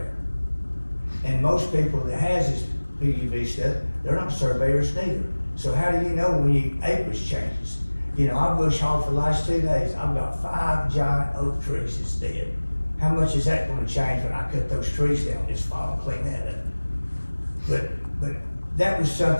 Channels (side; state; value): both; inverted; correlation -1.00